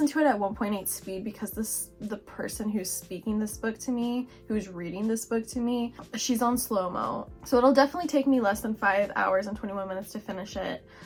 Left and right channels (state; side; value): identical; both; correlation 1.00